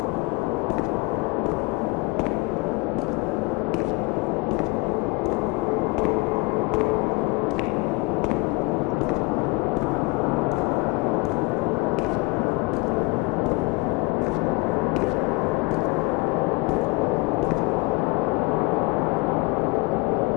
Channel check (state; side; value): quieter; right; 25.1 dB